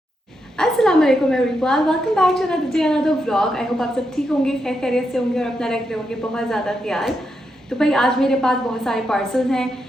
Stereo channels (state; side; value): normal; both; correlation 0.83